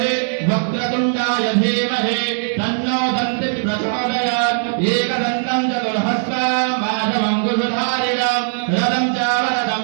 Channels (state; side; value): silent; left; 65 dB below the other